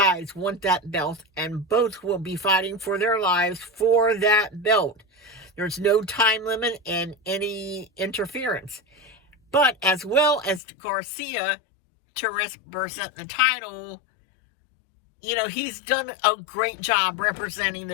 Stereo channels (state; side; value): drops out; right; at 10.6 s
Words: want that belt, and both will be fighting for their lives for that belt. There's no time limit and any interference. But as well as Garcia to represent the title, he's done a great job representing